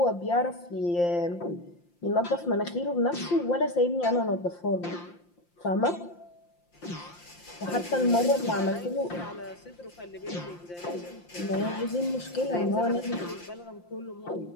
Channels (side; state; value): right; late; 5.8 ms